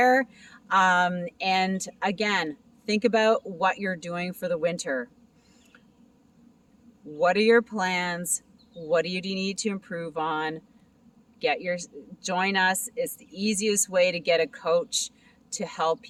And again, think about what you're doing for the winter. What are your plans? What do you need to improve on? Join us. It's the easiest way to get a coach to help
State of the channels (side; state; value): both; identical; correlation 1.00